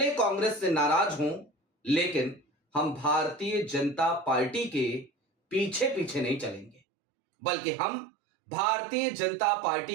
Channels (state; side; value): drops out; left; at 6.8 s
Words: कांग्रेस से नाराज हों, लेकिन हम भारतीय जनता पार्टी के पीछे पीछे नहीं चलेंगे, बल्कि हम भारतीय जनता